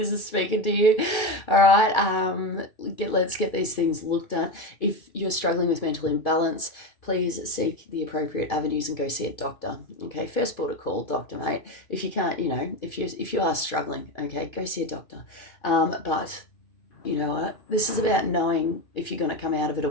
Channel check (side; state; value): right; late; 2.4 ms